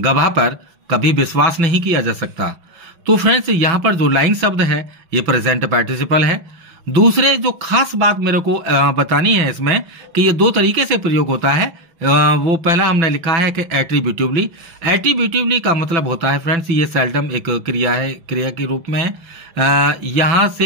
पर कभी विश्वास नहीं किया जा सकता। तो फ्रेंड्स यहां पर जो लाइंग शब्द है ये प्रेजेंट पार्टिसिपल है। दूसरे जो खास बात मेरे को बतानी है इसमें कि ये दो तरीके से प्रयोग होता है। वो पहला हमने लिखा है कि एट्रीब्यूटिवली। एट्रीब्यूटिवली का मतलब होता है फ्रेंड्स ये सेल्डम एक क्रिया है, क्रिया के रूप में है। यहां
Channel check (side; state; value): left; late; 5.9 ms